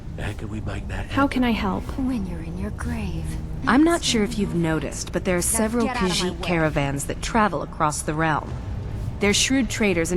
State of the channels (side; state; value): both; identical; correlation 1.00